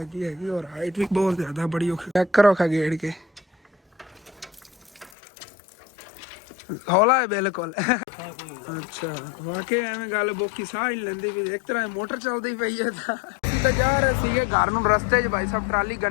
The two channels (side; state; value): right; drops out; at 5.1 s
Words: ਹੈਗੀ ਔਰ ਹਾਈਟ ਵੀ ਬਹੁਤ ਜ਼ਿਆਦਾ ਬੜੀ ਔਖੀ। ਚੈੱਕ ਕਰੋ ਖਾ ਗੇੜ ਕੇ ਹੌਲਾ ਹੈ ਬਿਲਕੁਲ। ਅੱਛਾ ਵਾਕਈ ਐਵੇਂ ਗੱਲ ਬੋਕੀ ਸਾਹ ਹੀ ਲੈਂਦੀ ਵੀ ਇੱਕ ਤਰ੍ਹਾਂ ਮੋਟਰ ਚੱਲਦੀ ਪਈ ਹੈ ਤਾਂ ਜਾ ਰਹੇ ਸੀਗੇ ਘਰ ਨੂੰ। ਰਸਤੇ 'ਚ ਭਾਈ ਸਾਹਿਬ ਟਰਾਲੀ